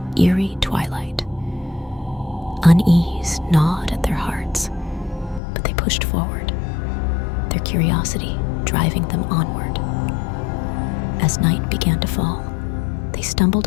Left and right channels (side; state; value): right; drops out; at 5.4 s